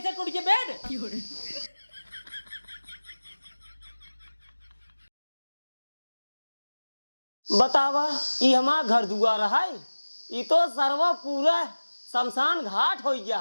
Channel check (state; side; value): inverted; both; correlation -1.00